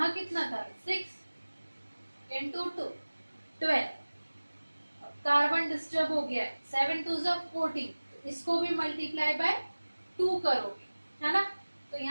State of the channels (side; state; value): both; inverted; correlation -1.00